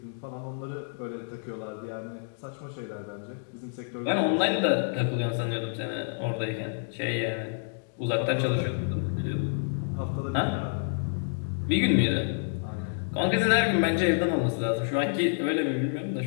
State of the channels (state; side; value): silent; right; digital silence